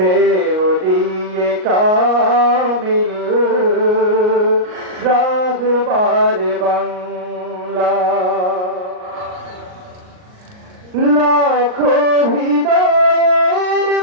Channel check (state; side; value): late; left; 38 ms